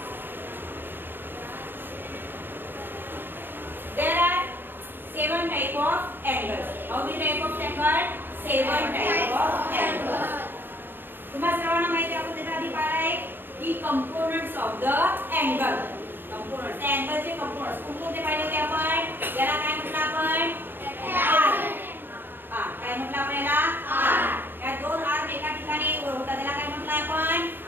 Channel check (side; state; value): left; late; 0.096 ms